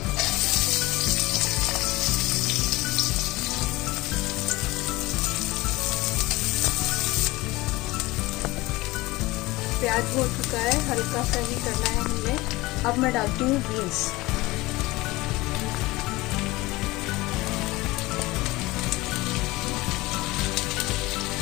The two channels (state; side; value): quieter; right; 20.6 dB